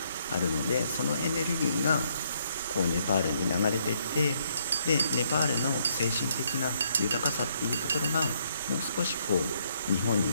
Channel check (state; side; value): inverted; both; correlation -0.71